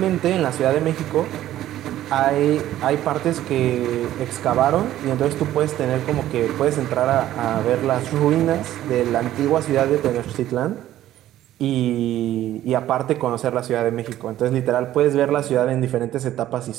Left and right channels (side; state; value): left; quieter; 13.2 dB